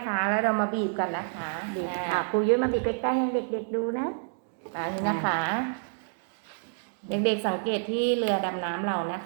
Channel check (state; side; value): silent; left; digital silence